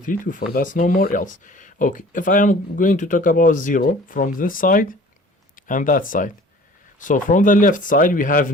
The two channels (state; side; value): normal; both; correlation 0.47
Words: to 4. That's no more else. Okay, if I am going to talk about 0 from this side and that side, so from the left side we have